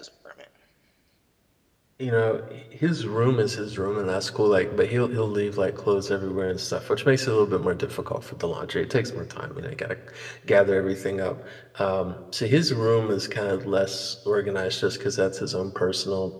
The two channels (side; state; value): both; identical; correlation 1.00